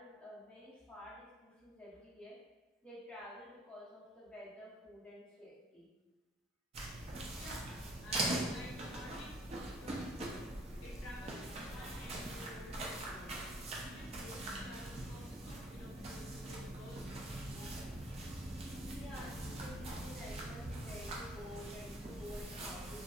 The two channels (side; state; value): both; normal; correlation 0.58